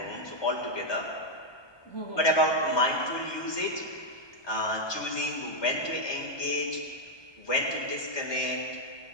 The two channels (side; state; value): right; late; 1.2 ms